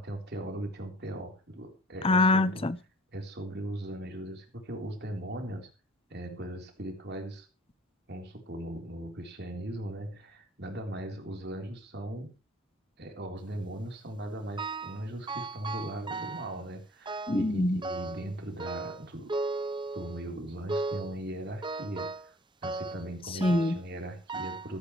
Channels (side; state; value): both; normal; correlation 0.52